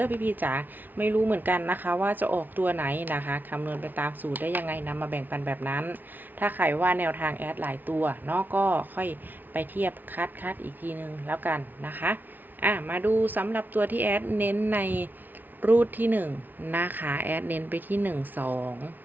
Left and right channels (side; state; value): left; late; 0.086 ms